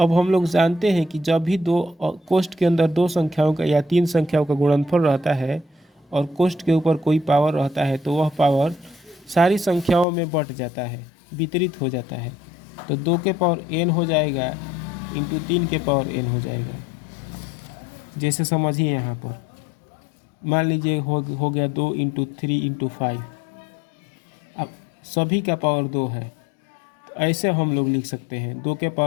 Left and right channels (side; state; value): right; drops out; at 10.1 s